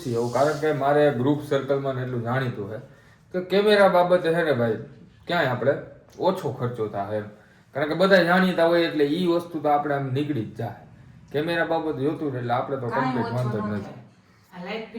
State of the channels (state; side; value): identical; both; correlation 1.00